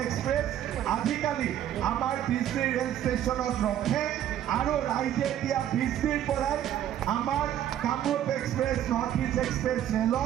এক্সপ্ৰেছ আজিকালি আমাৰ BC ৰেল ষ্টেচনত ৰখে আৰু ৰাইজে এতিয়া BCৰ পৰাই আমাৰ Kamrup express, north east express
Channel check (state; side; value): quieter; left; 11.2 dB